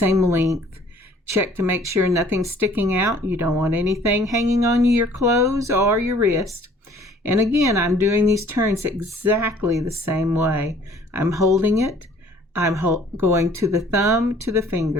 length. Check to make sure nothing's sticking out. You don't want anything hanging on your clothes or your wrist. And again, I'm doing these turns exactly the same way. I'm holding it. I'm going to the thumb, to the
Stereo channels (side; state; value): both; normal; correlation 0.56